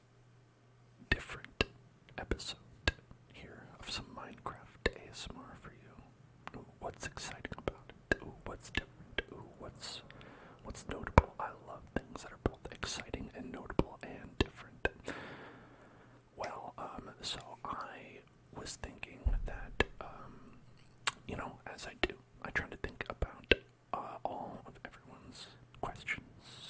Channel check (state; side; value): identical; both; correlation 1.00